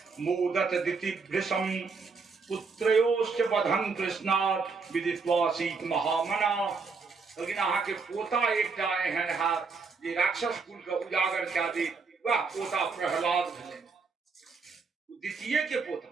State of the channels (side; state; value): left; quieter; 4.8 dB